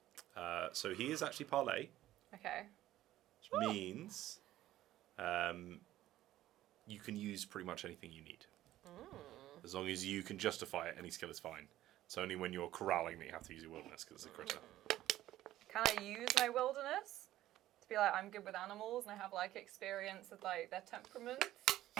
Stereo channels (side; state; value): left; quieter; 14.3 dB